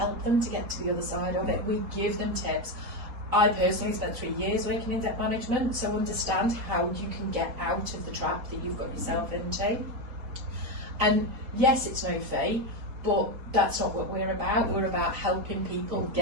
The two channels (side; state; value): left; late; 4.2 ms